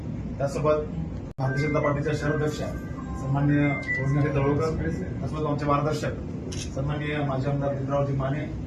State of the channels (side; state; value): both; identical; correlation 1.00